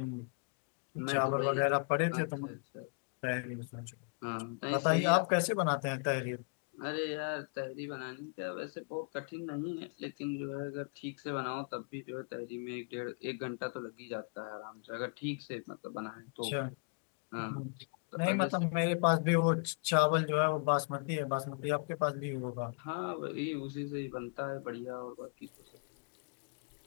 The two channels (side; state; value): right; quieter; 36.5 dB